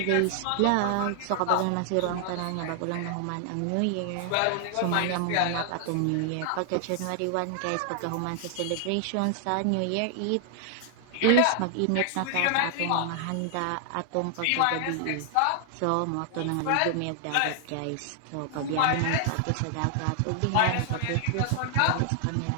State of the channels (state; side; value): different; both; correlation 0.00